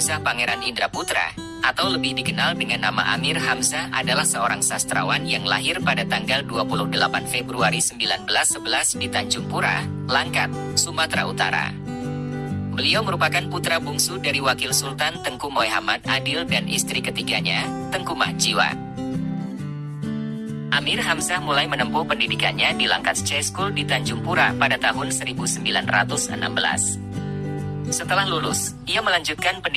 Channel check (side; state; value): both; identical; correlation 1.00